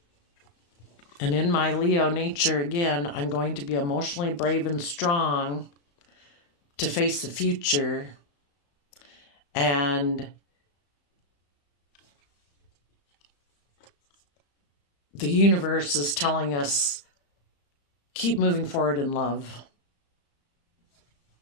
And in my Leo nature, again, I'm going to be emotionally brave and strong to face the future. And the universe is telling us, keep moving forward in love.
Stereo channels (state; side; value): late; right; 35 ms